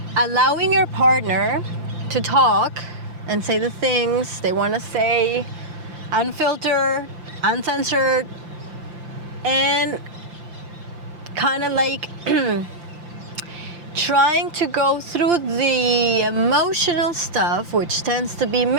your partner to talk and say the things they want to say, unfiltered, uncensored, and kind of like trying to go through the emotional stuff, which tends to be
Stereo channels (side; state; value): left; late; 5.8 ms